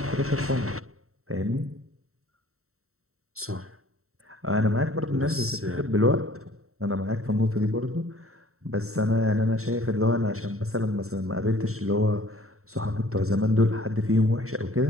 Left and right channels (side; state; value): left; late; 0.63 ms